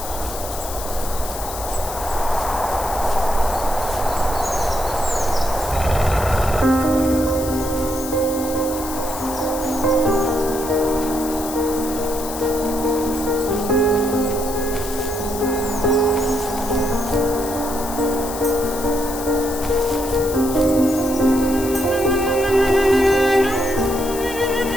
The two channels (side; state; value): left; noise; hiss, 10 dB below the sound